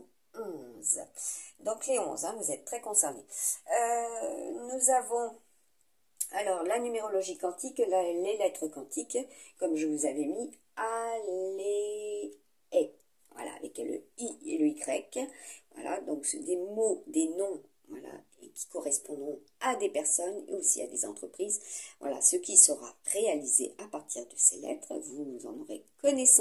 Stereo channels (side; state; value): both; identical; correlation 1.00